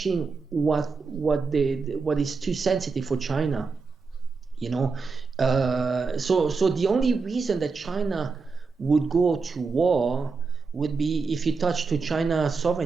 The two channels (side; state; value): left; quieter; 4.6 dB